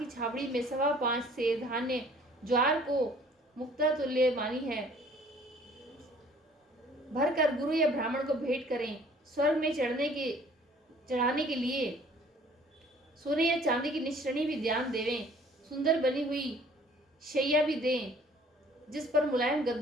छावड़ी में 5.25 से धान्य ज्वार को मुक्ता तुल्य मानी है भर कर गुरु या ब्राह्मण को भेंट करें। स्वर्ग में चढ़ाने के लिए सोने या चांदी की निश्रणी भी ध्यान देवें। सुंदर बनी हुई शैया भी दें जिस पर मुलायम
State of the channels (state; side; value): normal; both; correlation 0.55